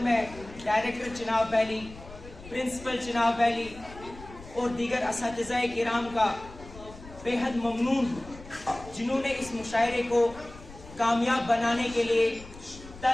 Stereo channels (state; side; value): noise; left; rumble, 17 dB below the sound